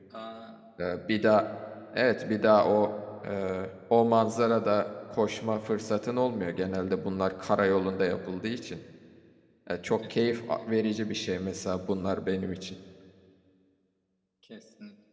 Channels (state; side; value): identical; both; correlation 1.00